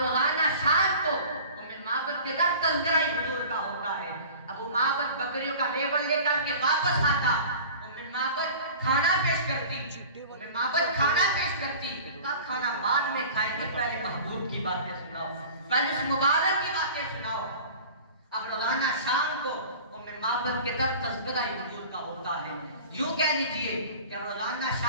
شام کو معبد کے در تذکرہ حضور کا ہوتا ہے۔ ابو معبد بکریوں کا ریبل لے کر کے واپس آتا، معبد کھانا پیش کرتی، کھانا بعد میں کھائیں گے، پہلے محبوب کی باتیں سناؤ، پہلے اس مبارک کی باتیں سناؤ۔ اب روزانہ شام کو معبد کے در تذکرہ حضور کا ہوتا ہے۔ یوں کہہ لیجئے کہ اب روزانہ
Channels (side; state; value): both; inverted; correlation -0.41